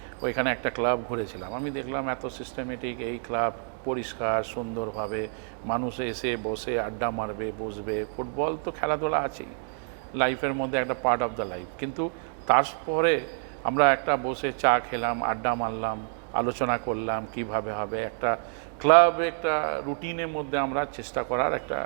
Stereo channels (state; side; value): silent; left; 56 dB below the other